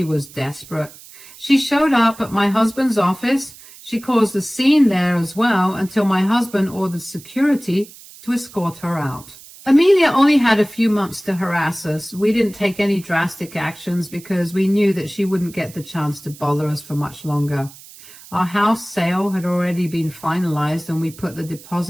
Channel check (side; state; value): right; noise; hiss, 20 dB below the sound